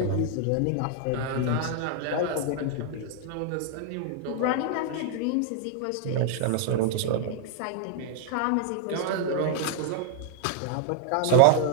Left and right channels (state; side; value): different; both; correlation 0.00